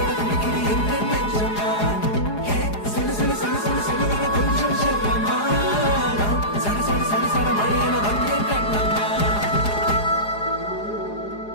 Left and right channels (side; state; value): right; late; 4.8 ms